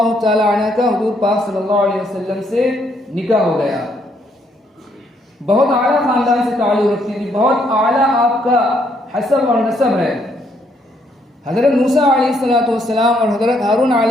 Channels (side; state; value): both; normal; correlation 0.71